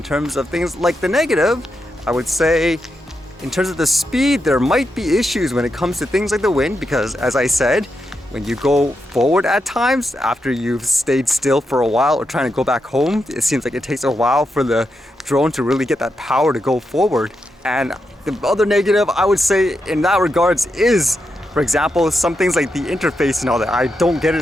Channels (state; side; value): normal; both; correlation 0.85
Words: terms of things like the negative, I would say in terms of the speed, there might be issues when it comes to things like the wind, because as I said, when you go forward at times, after you've stayed still for a while or trying to go back home, it seems like it takes a while for the drone to really get that power to go forward. And the other negative, I would say in that regards is, for example, some things like the interface and all that. I don't get